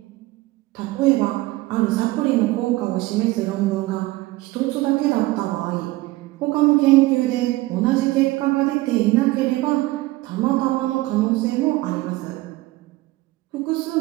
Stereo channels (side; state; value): left; quieter; 19.2 dB